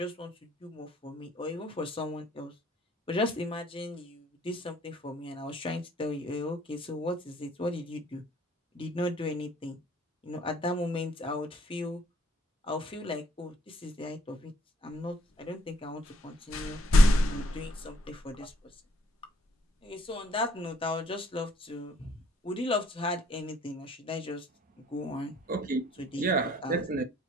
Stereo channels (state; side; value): normal; both; correlation 0.64